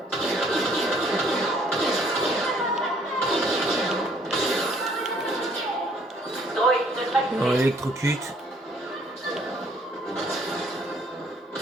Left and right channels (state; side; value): normal; both; correlation 0.62